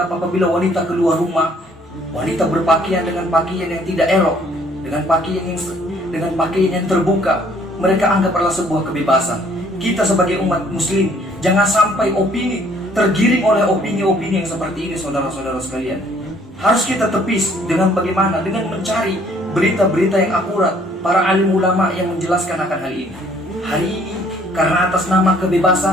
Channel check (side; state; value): both; normal; correlation 0.61